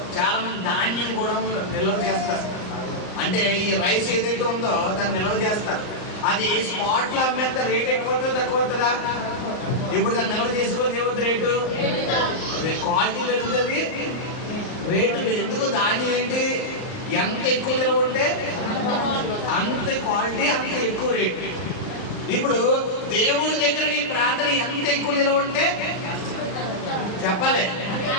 చాలా మంది ధాన్యం కూడా నిల్వ చేస్తారు. అంటే ఈ రైస్ ఏదైతే ఉందో దాన్ని నిల్వ చేస్తారు. అది స్పాట్ లో అమ్మేస్తే రేట్ ఎక్కువ అవుతుంది తక్కువ అవుతుందా? ఇప్పుడు దాన్ని నిల్వ చేసుకోవాలి, ఏమవుతుంది రేటు, క్వాలిటీ పెరుగుతుంది, రేటు. ఎందుకు ధాన్యం ఏంటి, ఎంత ఎక్కువ నిల్వ ఉంటే అంత క్వాలిటీ, అంత ఎక్కువ రేటు. ఇప్పుడు దేవుడి దగ్గర నీ ప్రార్థన ఎంత ఎక్కువ నిల్వ ఉంటే చెప్పాలి.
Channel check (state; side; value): late; right; 38 ms